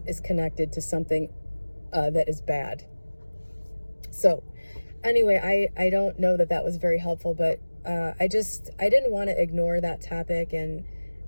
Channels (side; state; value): both; inverted; correlation -1.00